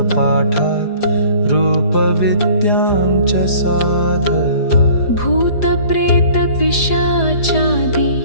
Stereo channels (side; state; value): right; late; 4.9 ms